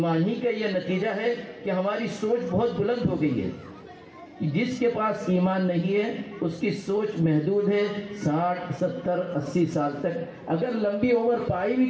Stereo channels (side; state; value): both; identical; correlation 1.00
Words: ہی کا یہ نتیجہ ہے کہ ہماری سوچ بہت بلند ہو گئی ہے. جس کے پاس ایمان نہیں ہے اس کی سوچ محدود ہے. 60 70 80 سال تک اگر لمبی عمر پائی بھی